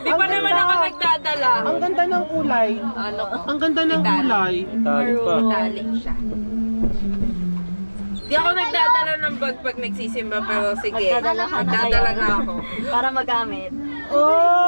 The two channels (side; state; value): both; inverted; correlation -1.00